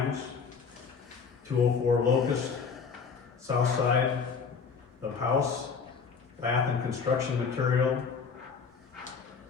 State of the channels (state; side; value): quieter; right; 5.7 dB